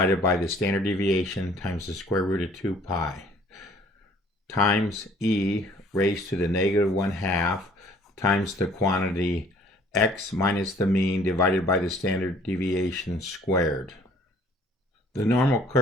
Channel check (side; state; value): both; normal; correlation 0.56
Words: by the standard deviation times the square root of 2 pi times e raised to the -1/2 times the quantity x minus the mean divided by the standard deviation squared. The normal